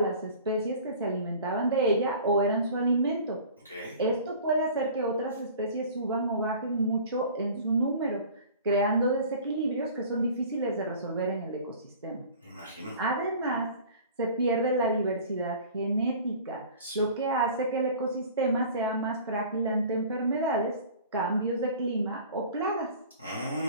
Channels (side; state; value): both; inverted; correlation -0.43